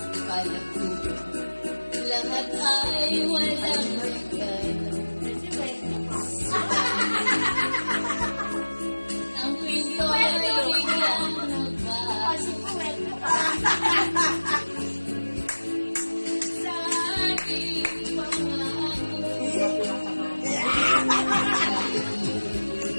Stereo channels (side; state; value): both; inverted; correlation -1.00